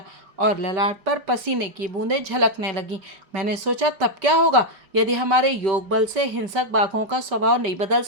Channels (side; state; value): left; late; 5.2 ms